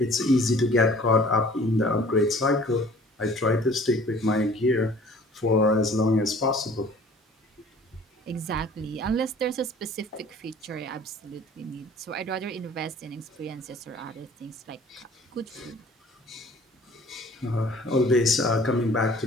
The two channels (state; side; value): normal; both; correlation 0.51